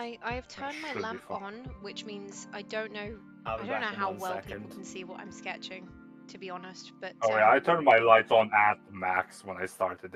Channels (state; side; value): identical; both; correlation 1.00